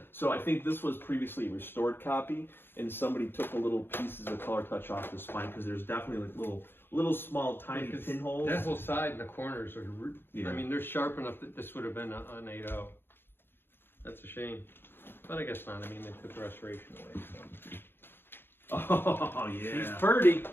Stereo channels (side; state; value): right; late; 0.10 ms